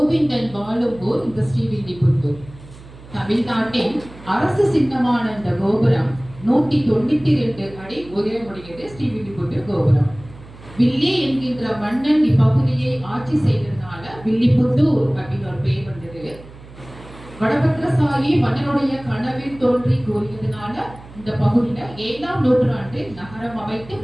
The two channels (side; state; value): right; noise; hum, 19 dB below the sound